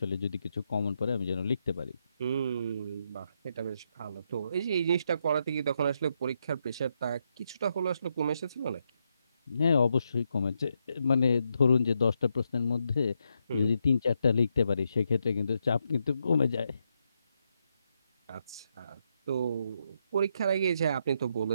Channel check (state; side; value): inverted; both; correlation -0.80